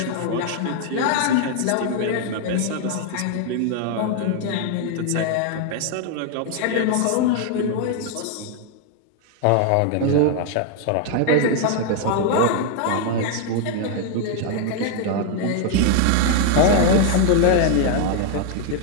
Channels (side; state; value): both; different; correlation 0.00